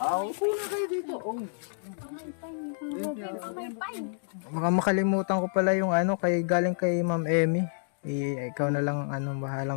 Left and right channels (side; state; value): right; silent; digital silence